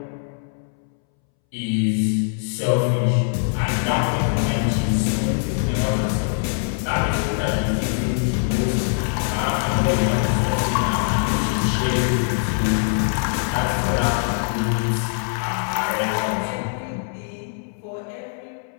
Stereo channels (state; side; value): silent; right; 64 dB below the other